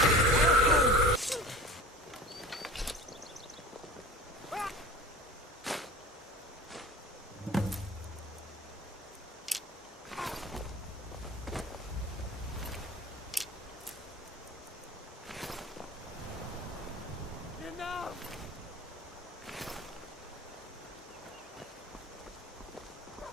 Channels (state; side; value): normal; both; correlation 0.37